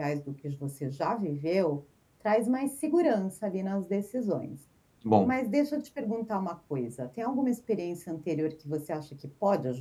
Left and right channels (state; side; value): identical; both; correlation 1.00